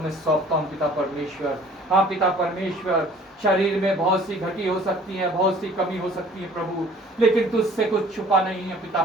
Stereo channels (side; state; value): both; normal; correlation 0.52